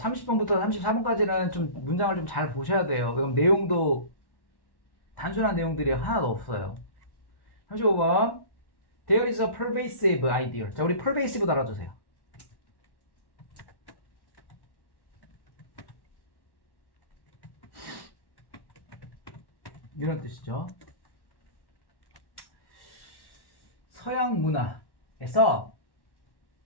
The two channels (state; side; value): late; right; 1.1 ms